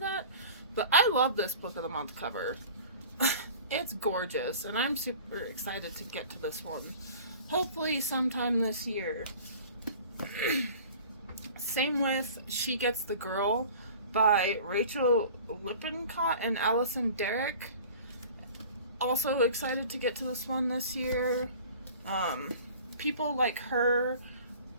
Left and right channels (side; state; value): both; inverted; correlation -0.43